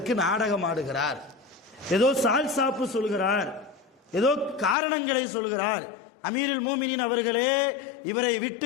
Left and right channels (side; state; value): right; drops out; at 4.8 s